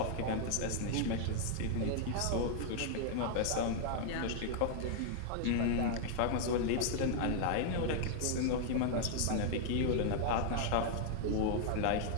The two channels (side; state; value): both; different; correlation 0.00